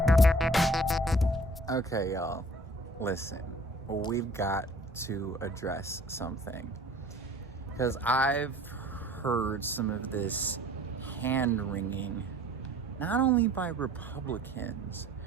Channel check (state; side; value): normal; both; correlation 0.52